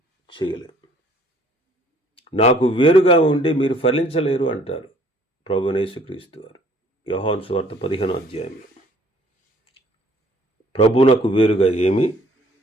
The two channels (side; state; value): both; normal; correlation 0.58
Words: చేయలేం. నాకు వేరుగా ఉండి మీరు ఫలించలేరు అంటారు ప్రభువైన యేసుక్రీస్తు వారు. యోహాను సువార్త 15వ అధ్యాయంలో ప్రభువునకు వేరుగా ఏమీ